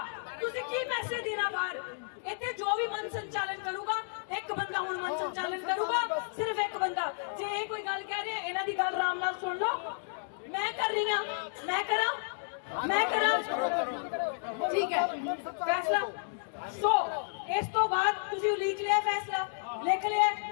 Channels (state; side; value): silent; right; digital silence